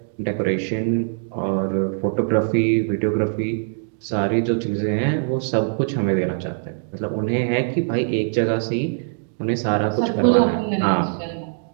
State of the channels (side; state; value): left; silent; digital silence